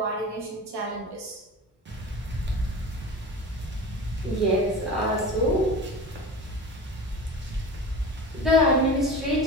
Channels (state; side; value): normal; both; correlation 0.33